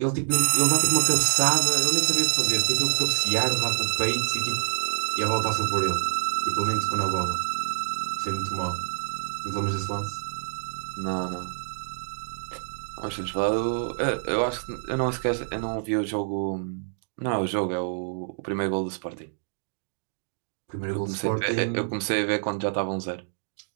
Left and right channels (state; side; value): silent; left; digital silence